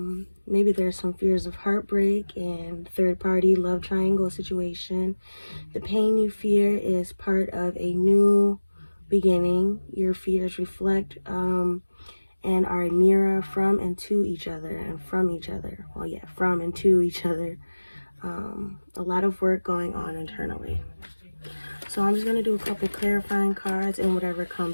maybe there's some fears of heartbreak and third party love triangle situation. The pain you fear is part of a new beginning. Your fears reflect and are a mirror from and to each other and from each other. Well, yeah, from and to each other. A lot of work going on internally. So I'm just going to do a couple clarifying cards and whatever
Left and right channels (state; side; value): inverted; both; correlation -1.00